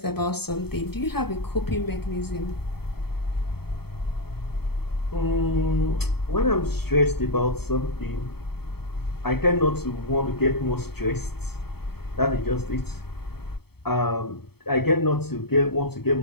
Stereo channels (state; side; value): late; right; 0.96 ms